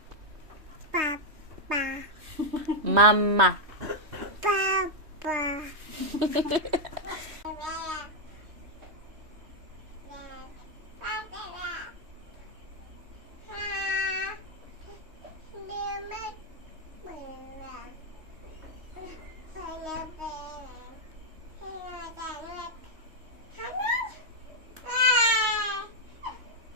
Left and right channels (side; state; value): left; late; 3.2 ms